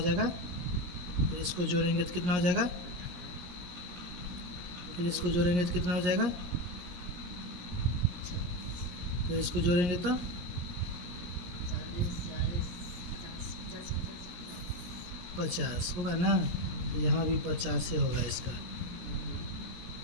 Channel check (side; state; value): left; late; 17 ms